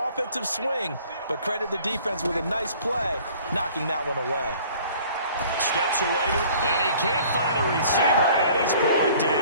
swing. But credit the defense with a nice play, knocking that one away. Steps away, and he can't find a receiver, and he's brought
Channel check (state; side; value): inverted; both; correlation -0.52